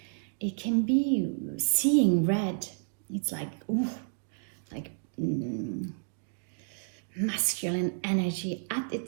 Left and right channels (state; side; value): silent; left; digital silence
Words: It can be seeing red. It's like, masculine energy at